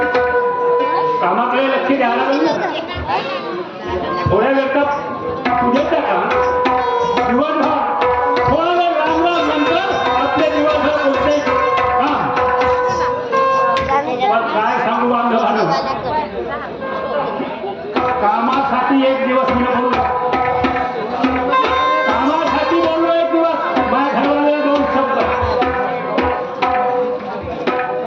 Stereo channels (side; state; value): both; identical; correlation 1.00